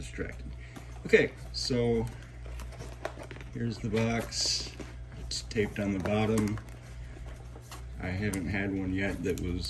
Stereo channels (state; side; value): identical; both; correlation 1.00